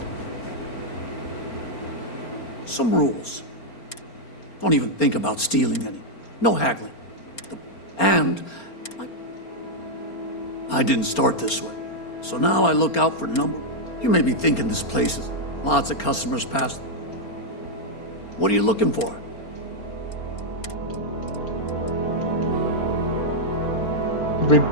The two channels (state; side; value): late; right; 4.3 ms